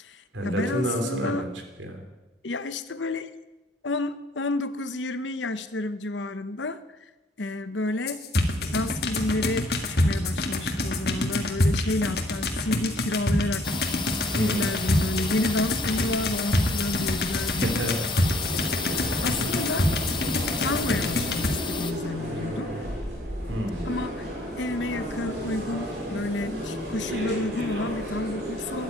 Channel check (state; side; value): normal; both; correlation 0.60